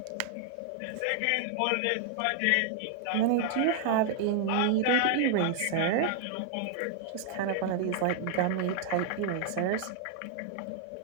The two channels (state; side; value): different; both; correlation 0.00